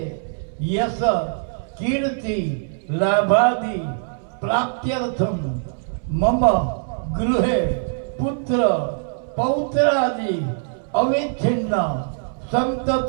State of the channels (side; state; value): left; silent; 64 dB below the other